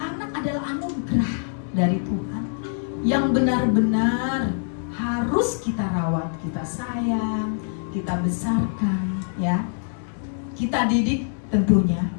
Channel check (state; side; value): silent; right; digital silence